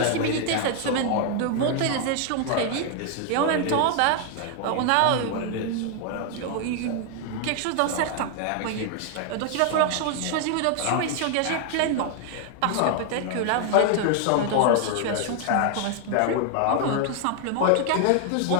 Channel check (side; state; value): both; different; correlation 0.00